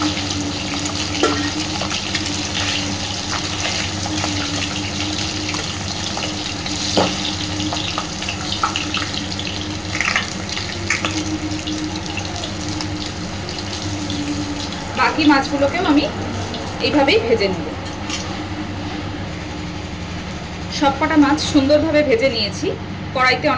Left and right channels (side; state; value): both; identical; correlation 1.00